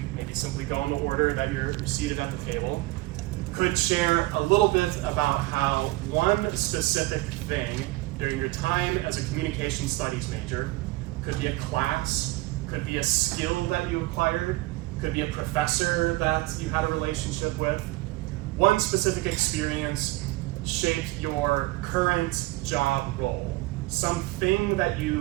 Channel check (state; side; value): quieter; left; 20.4 dB